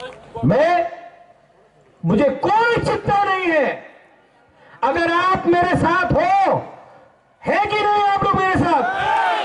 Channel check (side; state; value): both; identical; correlation 1.00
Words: मुझे कोई चिंता नहीं है। अगर आप मेरे साथ हो, है कि नहीं आप लोग मेरे साथ?